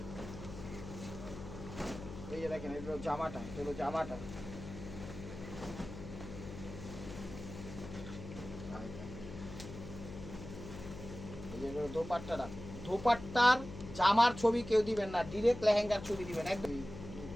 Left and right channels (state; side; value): noise; left; hum, 11 dB below the sound